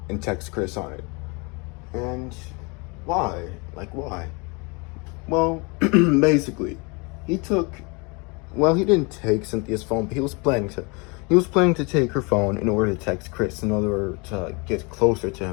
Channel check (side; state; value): right; quieter; 30.0 dB